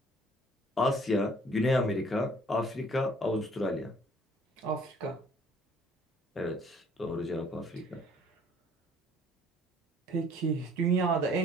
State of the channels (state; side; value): normal; both; correlation 0.57